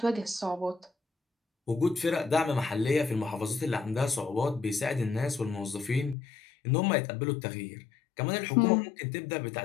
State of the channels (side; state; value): right; drops out; at 6.2 s